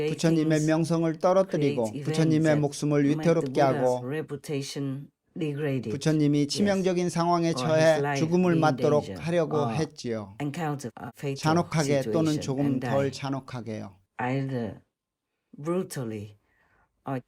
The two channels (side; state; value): both; identical; correlation 1.00